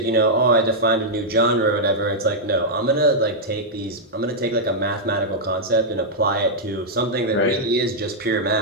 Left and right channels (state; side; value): normal; both; correlation -0.06